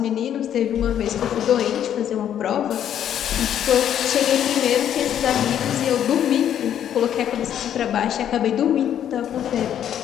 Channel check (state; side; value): quieter; right; 10.0 dB